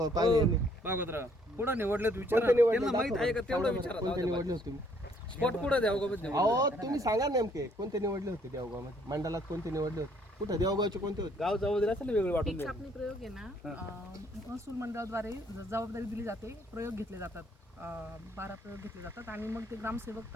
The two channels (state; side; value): normal; both; correlation 0.65